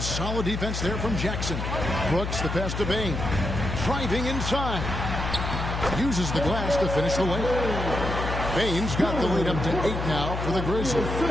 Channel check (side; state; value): left; noise; hum, 4 dB below the sound